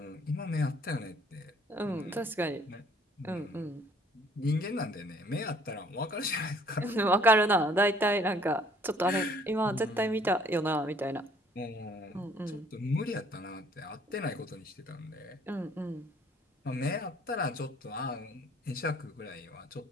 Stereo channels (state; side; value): normal; both; correlation 0.59